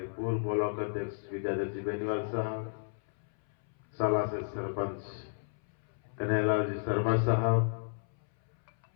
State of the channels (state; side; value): silent; right; 56 dB below the other